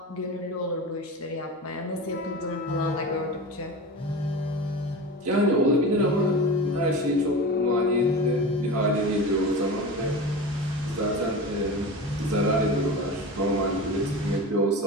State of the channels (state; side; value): normal; both; correlation 0.29